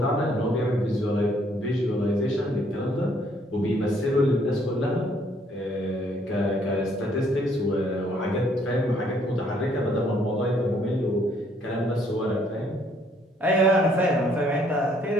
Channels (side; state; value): both; normal; correlation 0.65